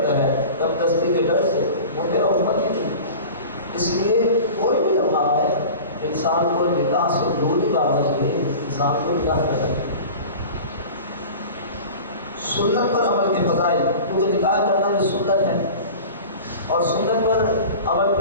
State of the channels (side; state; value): both; inverted; correlation -0.37